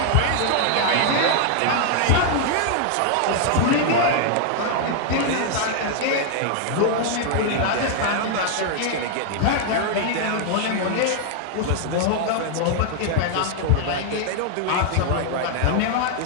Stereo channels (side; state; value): both; different; correlation 0.00